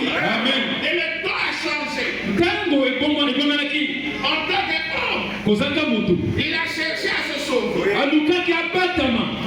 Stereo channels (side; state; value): both; identical; correlation 1.00